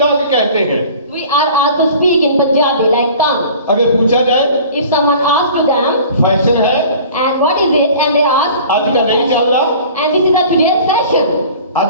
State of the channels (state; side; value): inverted; both; correlation -0.45